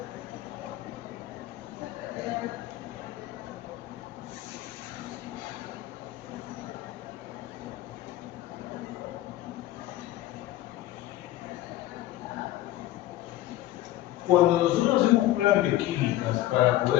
Cuando nosotros hacemos pruebas bioquímicas para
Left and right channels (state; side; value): quieter; right; 15.0 dB